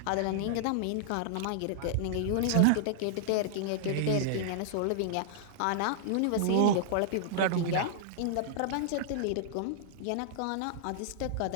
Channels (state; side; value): different; both; correlation -0.01